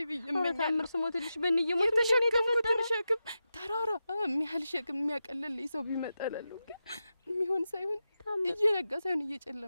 ብዬ እመኛለሁ። ታምር ስሞትልሽ በእንየሞት የተሸከምኩትን ሸክም ተራራ የሚያህል ሸክም የሚያቀልልኝ ሰው ቢመጣ እላለሁ። ግን የሚሆን ሳይሆን እየነጋ ሳይሆን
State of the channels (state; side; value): inverted; both; correlation -0.91